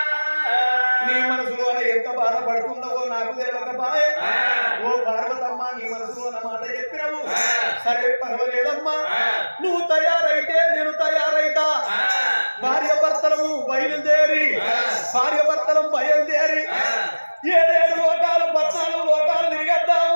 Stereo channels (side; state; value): both; inverted; correlation -1.00